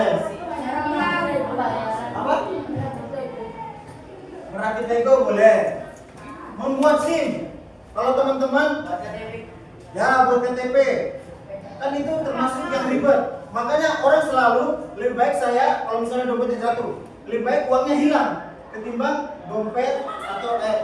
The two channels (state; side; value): identical; both; correlation 1.00